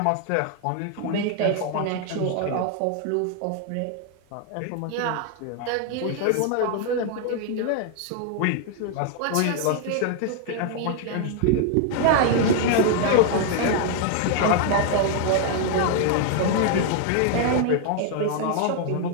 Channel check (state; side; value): different; both; correlation 0.00